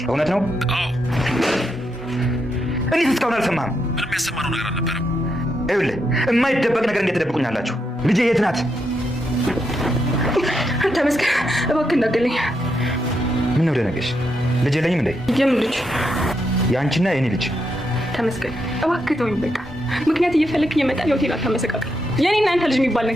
እውነት ነው? አዎ። እኔ እስካሁን አልሰማህም? ምንም ያሰማነው ነገር አልነበረም። ይኸውልህ የማይደበቅ ነገር እንዴት ትደብቁኛላችሁ? ልጄ የት ናት? ተመስገን እባክህ እንዳትገለኝ። ምን ነው ደነገሽ? ልጅ የለኝም እንዴ? የምን ልጅ? የአንቺና የኔ ልጅ። ተመስገን እባክህ ተወኝ በቃ። ምክንያት እየፈለክ እየመጣ ሆቴል አታመሰቃቀል። የኔና አንተ ልጅ የሚባል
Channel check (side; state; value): both; normal; correlation 0.81